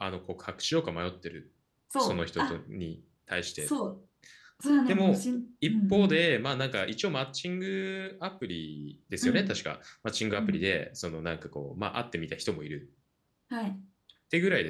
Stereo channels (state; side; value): identical; both; correlation 1.00